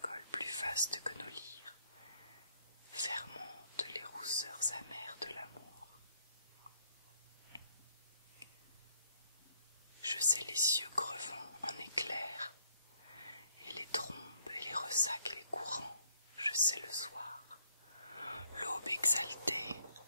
plus vaste que nos lyres, fermentent les rousseurs amères de l'amour. Je sais les cieux crevant en éclairs, et les trombes et les ressacs et les courants, je sais le soir, l'aube exaltée,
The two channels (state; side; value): inverted; both; correlation -0.68